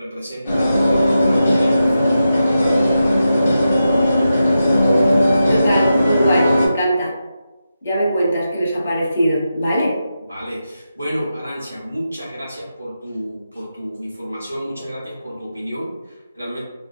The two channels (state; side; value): inverted; both; correlation -0.89